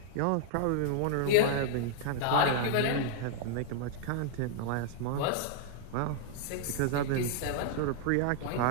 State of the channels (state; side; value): different; both; correlation 0.00